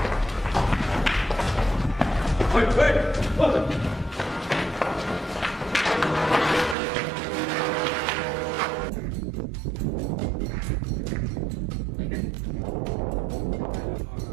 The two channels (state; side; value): drops out; left; at 6.8 s